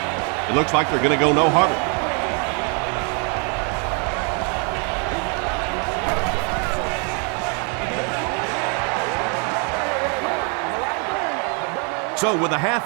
It looks like they're going to go no huddle. So with the half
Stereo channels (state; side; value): quieter; left; 37.2 dB